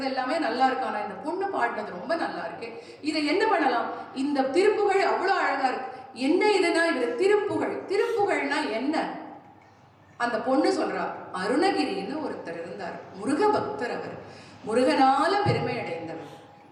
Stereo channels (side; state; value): both; identical; correlation 1.00